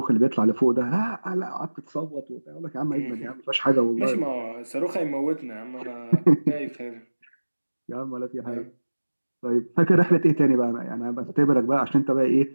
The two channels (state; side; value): inverted; both; correlation -1.00